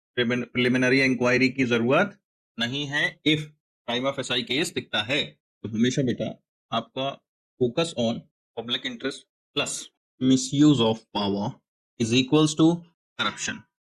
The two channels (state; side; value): identical; both; correlation 1.00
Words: प्रिलिमिनरी इंक्वायरी की जरूरत नहीं है if time of SI case दिखता है। तो हमेशा बेटा आपका focus on public interest plus misuse of power is equals to corruption.